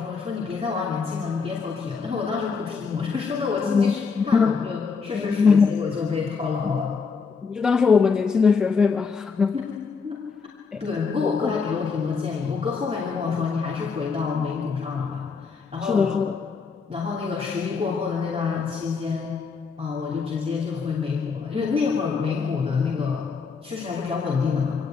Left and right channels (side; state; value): right; quieter; 5.2 dB